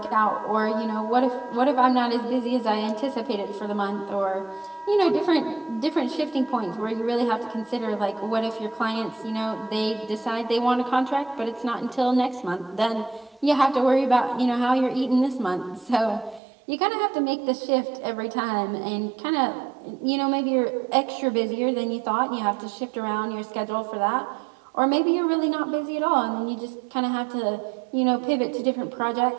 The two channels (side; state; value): left; drops out; at 16.4 s